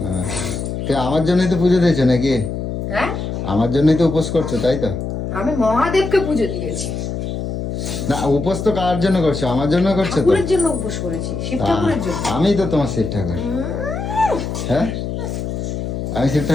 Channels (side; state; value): left; noise; hum, 4 dB below the sound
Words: হ্যাঁ, তো আমার জন্যই তো পুজো দিয়েছো নাকি? হ্যাঁ, আমার জন্যই তো উপোস করছো, তাই তো? আমি মহাদেবকে পুজো দিয়েছি। না, উপোস তো কার জন্য করছো? আমার জন্য করছো তো? ঠাকুরের জন্য উপোস করেছি, শিব ঠাকুরের জন্য। আমি তো তোমার শিব ঠাকুর। হ্যাঁ, আমি শিব